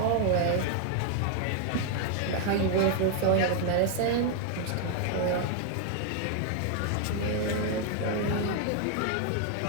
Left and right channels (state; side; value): different; both; correlation 0.00